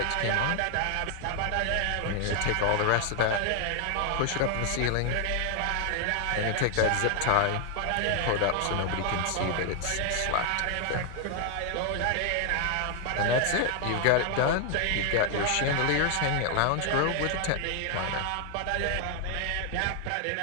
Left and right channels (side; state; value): both; different; correlation 0.00